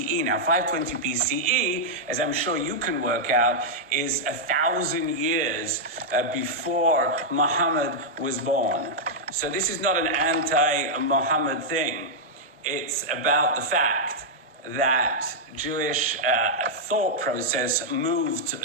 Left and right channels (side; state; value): both; normal; correlation -0.06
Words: Now, 520 BCE, as I'm sure you can work out, is 1,000 years before Muhammad was born. So this is not an anti-Muhammad thing. It's about the fact that Jewish thought process moved